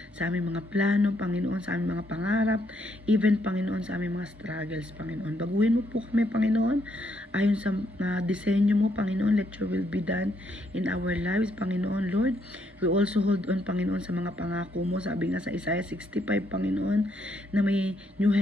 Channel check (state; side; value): normal; both; correlation 0.74